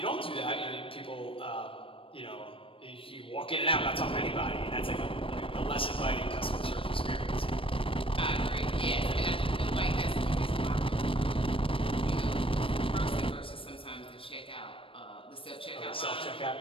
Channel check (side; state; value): right; late; 0.26 ms